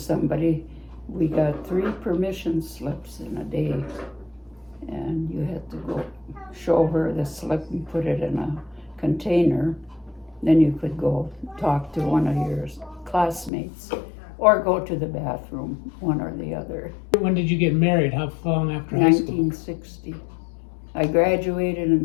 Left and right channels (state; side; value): drops out; right; at 13.5 s